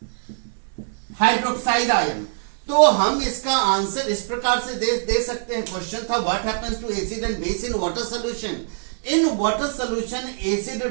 hydroxide ion. तो हम इसका आंसर इस प्रकार से दे सकते हैं। क्वेश्चन था what happens to acid and base in water solution. In water solution acid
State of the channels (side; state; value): left; silent; digital silence